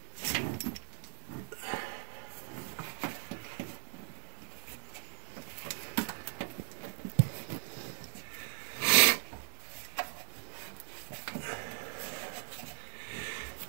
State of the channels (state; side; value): silent; left; digital silence